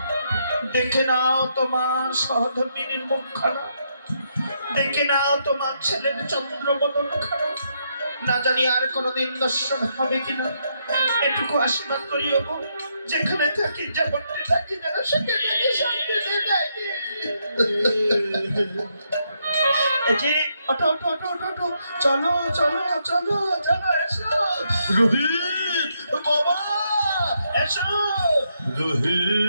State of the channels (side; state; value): both; inverted; correlation -0.78